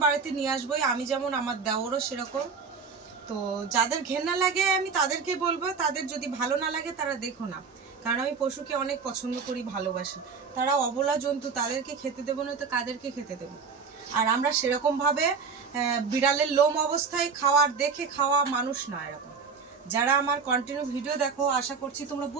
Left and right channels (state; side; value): quieter; left; 5.4 dB